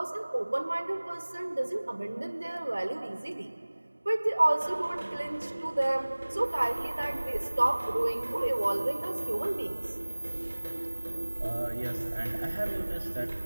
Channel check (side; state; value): both; inverted; correlation -1.00